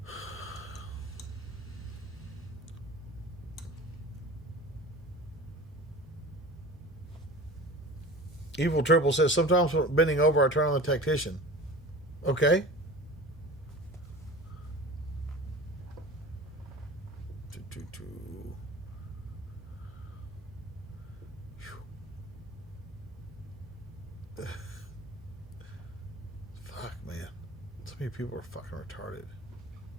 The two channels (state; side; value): normal; both; correlation 0.38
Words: Evil Triple says, sometimes when bending over, I turn on the Tactician. Okay. Fuck, man. So many people are fucking retarded.